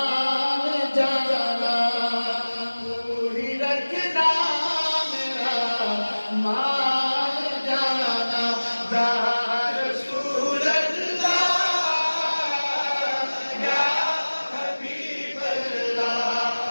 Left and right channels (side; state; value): both; inverted; correlation -1.00